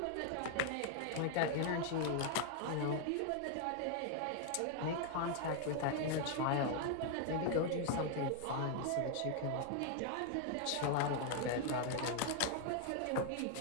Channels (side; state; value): both; different; correlation 0.00